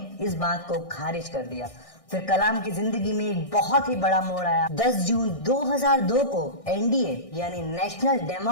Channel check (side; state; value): right; late; 1.6 ms